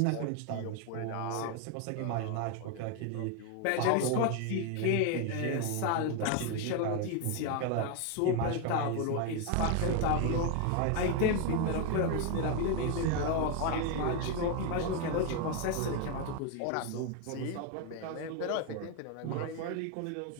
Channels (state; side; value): different; both; correlation 0.01